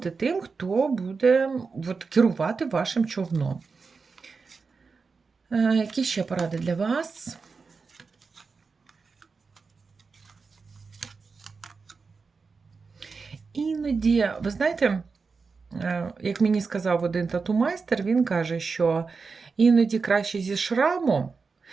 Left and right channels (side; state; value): left; quieter; 4.8 dB